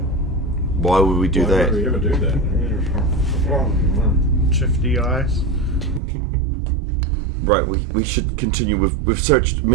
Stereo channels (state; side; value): drops out; left; at 6.0 s